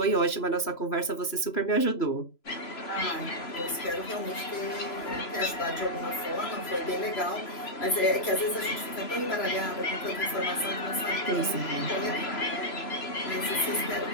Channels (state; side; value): late; right; 3.0 ms